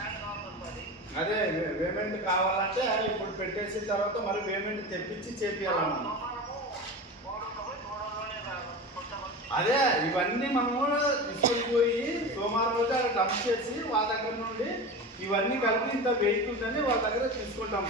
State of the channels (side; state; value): both; normal; correlation 0.28